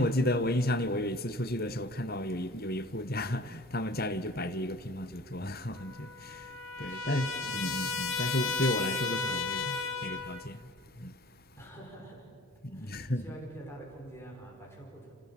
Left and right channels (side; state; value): both; normal; correlation 0.46